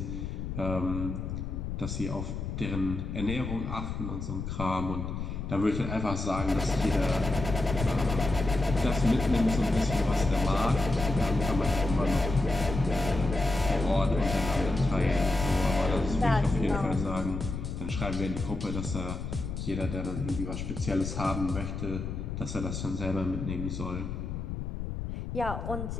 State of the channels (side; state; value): left; noise; rumble, 5 dB below the sound